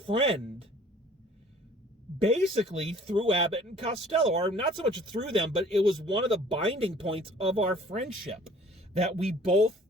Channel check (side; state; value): both; normal; correlation 0.53